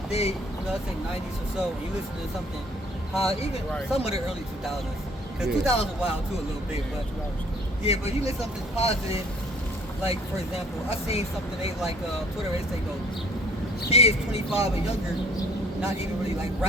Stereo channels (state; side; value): normal; both; correlation 0.56